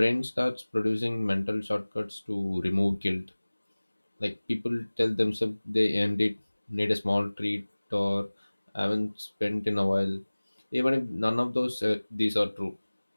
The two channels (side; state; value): both; inverted; correlation -1.00